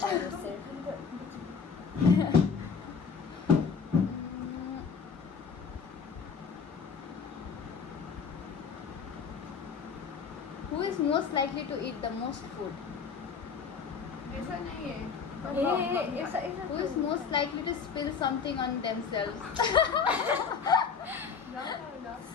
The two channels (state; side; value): quieter; right; 6.0 dB